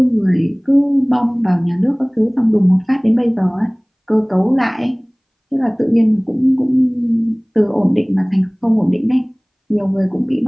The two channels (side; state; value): both; identical; correlation 1.00